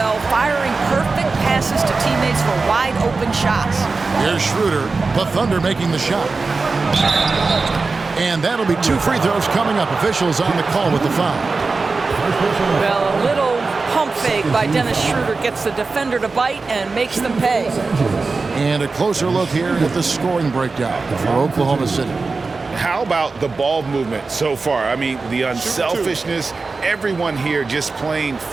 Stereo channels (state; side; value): quieter; left; 4.0 dB